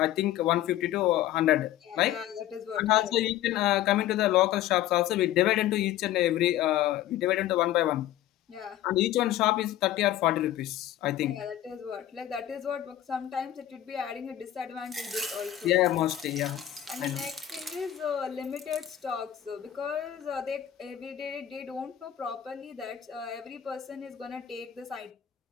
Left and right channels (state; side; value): quieter; right; 12.5 dB